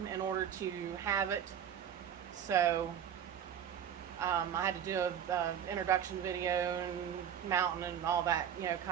in order to have it. So I had to do a introduction video and mounting and all that, you know,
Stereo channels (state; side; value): quieter; left; 9.0 dB